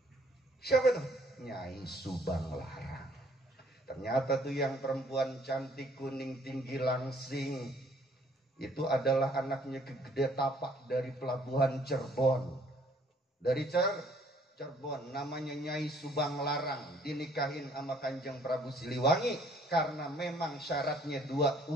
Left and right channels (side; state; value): both; normal; correlation 0.61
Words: Siapa tuh? Nyai Subang Larang. Ternyata tuh yang perempuan cantik, kuning, tinggi, langsing, itu adalah anaknya Gede Tapak dari pelabuhan Cirebon. Dari Cirebon, namanya Nyai Subang Larang, dinikahin sama Kanjeng Prabu Siliwangi karena memang syaratnya 2